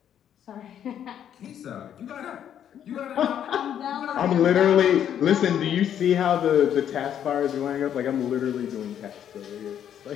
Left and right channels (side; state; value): right; quieter; 9.6 dB